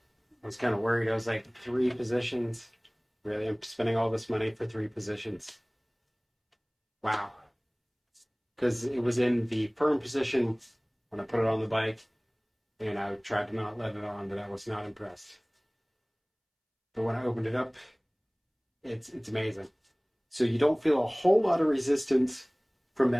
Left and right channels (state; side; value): identical; both; correlation 1.00